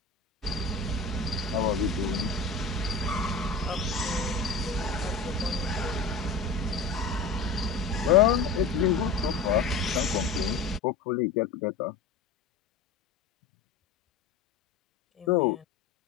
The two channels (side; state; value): right; quieter; 4.3 dB